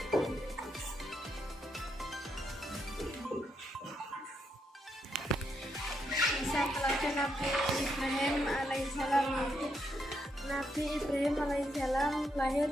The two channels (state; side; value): normal; both; correlation 0.79